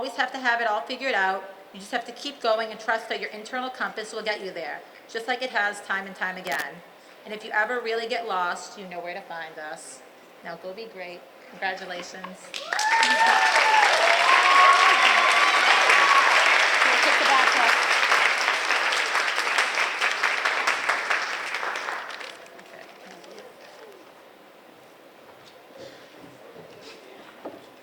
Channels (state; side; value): identical; both; correlation 1.00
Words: have to have it all figured out. You just have to keep going and trust that your internal compass will get you there, just like it has time and time again. And if you ever really get lost, you know where to find us. Now go be great. Congratulations.